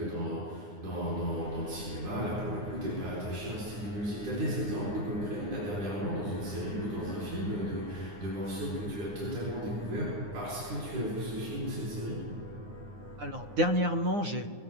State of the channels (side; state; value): left; late; 9.7 ms